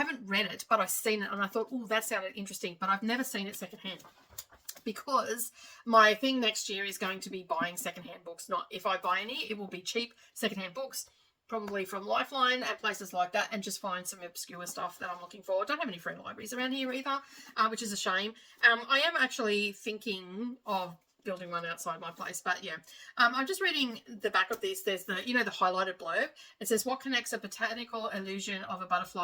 read it, but I've seen it, and I thought, oh, that sounded interesting, but I've never seen it secondhand, because my thing next year is going to be buying secondhand books. Not if I buy any, it will be cheap secondhand books, probably from Lifeline and places like that, and just find some obscure stuff that I'm looking for. I don't have any free libraries around here either, which is a shame. I am actually thinking of building one outside my place, but yeah, I'm just reading the back of this. There's the, you know, the highlighted blurb. It says, what connects a botanical illusion of a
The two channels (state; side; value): identical; both; correlation 1.00